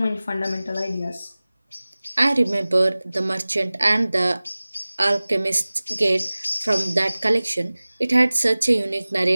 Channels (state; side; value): inverted; both; correlation -0.99